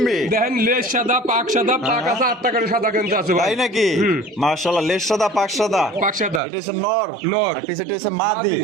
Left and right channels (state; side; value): drops out; left; at 6.4 s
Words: দেখেন লেজ সাদা পাক সাদা পাক আছে 8 টাকার সাদা কিন্তু আছে ভাই তাই নাকি হুম। মাশাআল্লাহ লেজ সাদা পাক সাদা পাক সাদা এটা হচ্ছে নর নর। আর পিছনে হচ্ছে মাদি